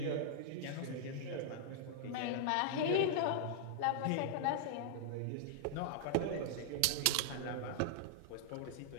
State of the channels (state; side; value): different; both; correlation -0.01